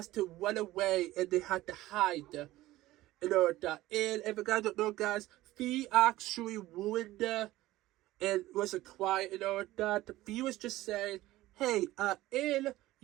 to run away and they had to hide and all of that. And if you guys don't know, guys, Fee actually ruined and was quiet and all of that. Fee was just saying, hey,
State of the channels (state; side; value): quieter; left; 16.7 dB